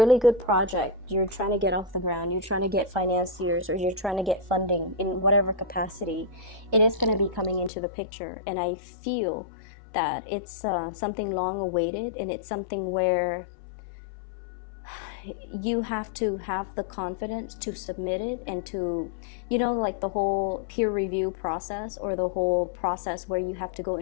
good project, you're trying to get off the ground, you're trying to get financiers, or you're trying to get funding in whatever capacity, it is going to be coming into the picture. And I feel that it's something long awaited, and it's something where you have to have the confidence to submit it, and to, you know, like the whole peer review process, or the whole process where you have to go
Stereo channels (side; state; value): right; drops out; at 7.7 s